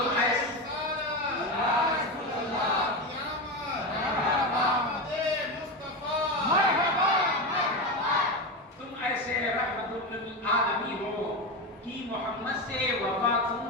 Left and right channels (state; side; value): normal; both; correlation 0.17